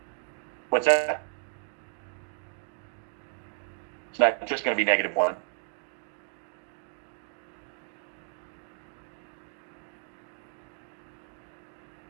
What's that? It's not just going to be negative 1.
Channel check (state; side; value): silent; left; digital silence